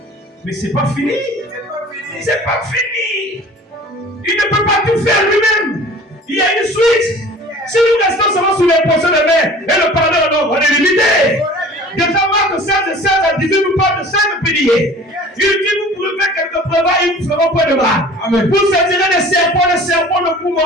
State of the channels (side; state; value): both; normal; correlation 0.44